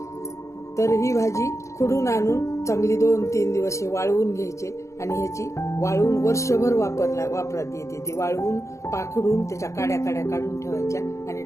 तर ही भाजी खुडून आणून चांगली 2-3 दिवस वाळवून घ्यायचे आणि ह्याची वाळवून वर्षभर वापरात येते. ती वाळवून पाखडून त्याच्या काड्या काढून ठेवायच्या आणि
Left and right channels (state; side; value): late; right; 0.14 ms